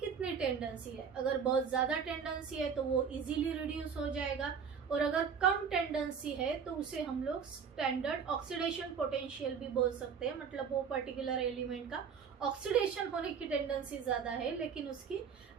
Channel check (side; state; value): left; quieter; 6.6 dB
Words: टेंडेंसी है। अगर बहुत ज्यादा टेंडेंसी है तो वो इजीली रिड्यूस हो जाएगा, और अगर कम टेंडेंसी है तो उसे हम लोग स्टैंडर्ड ऑक्सीडेशन पोटेंशियल भी बोल सकते हैं, मतलब वो पर्टिकुलर एलिमेंट का ऑक्सीडेशन होने की टेंडेंसी ज्यादा है लेकिन उसकी